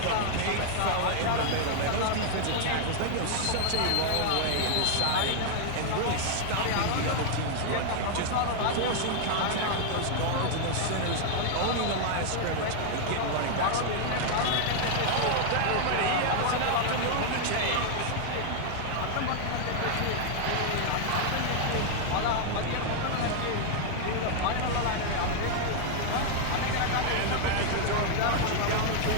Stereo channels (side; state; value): both; different; correlation 0.00